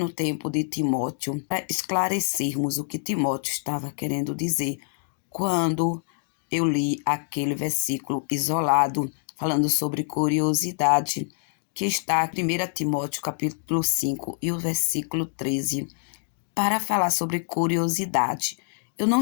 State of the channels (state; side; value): silent; right; digital silence